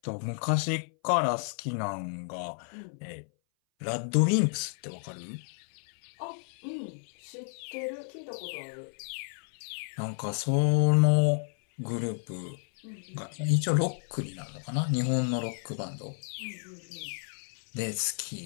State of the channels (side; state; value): right; silent; 57 dB below the other